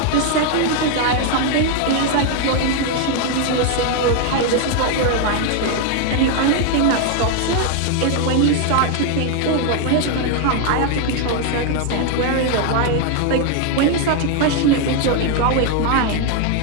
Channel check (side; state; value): both; different; correlation 0.00